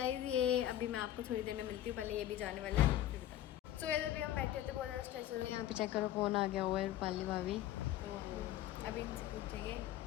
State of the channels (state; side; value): quieter; right; 12.8 dB